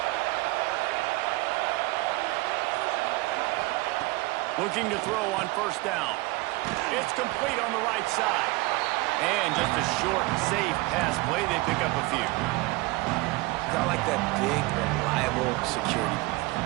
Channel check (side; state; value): left; quieter; 22.3 dB